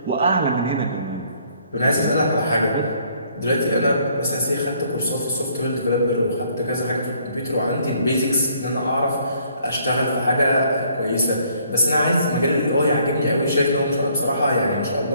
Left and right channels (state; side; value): inverted; both; correlation -0.64